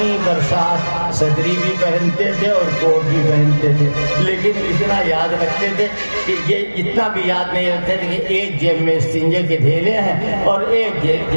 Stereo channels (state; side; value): inverted; both; correlation -1.00